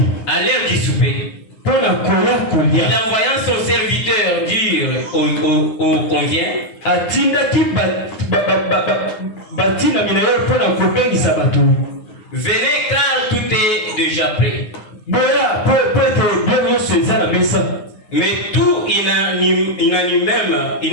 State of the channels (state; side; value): late; right; 9.6 ms